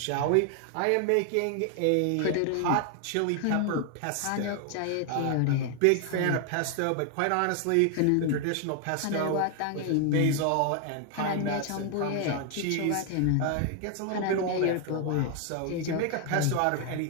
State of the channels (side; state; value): both; different; correlation 0.00